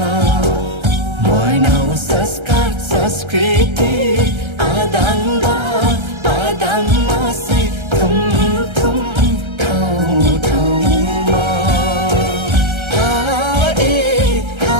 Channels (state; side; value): late; left; 1.3 ms